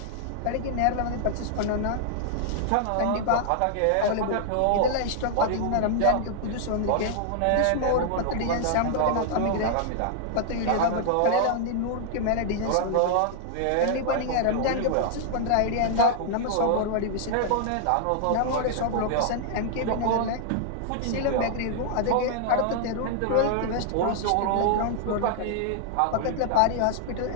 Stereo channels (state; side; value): different; both; correlation -0.01